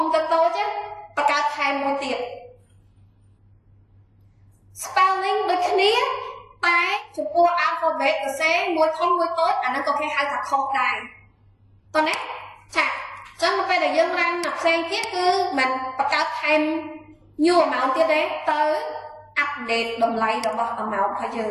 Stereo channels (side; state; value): both; identical; correlation 1.00